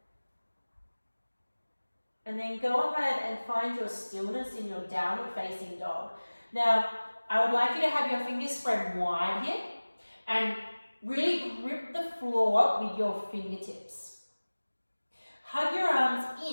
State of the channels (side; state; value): both; inverted; correlation -1.00